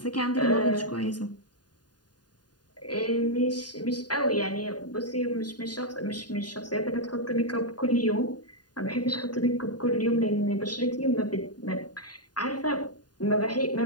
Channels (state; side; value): late; right; 0.70 ms